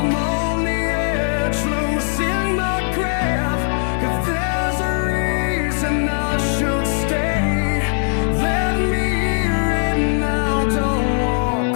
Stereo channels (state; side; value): silent; right; 66 dB below the other